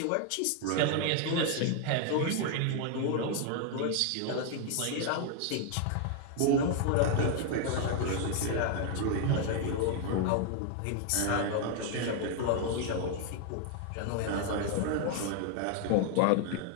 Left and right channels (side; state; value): both; different; correlation 0.00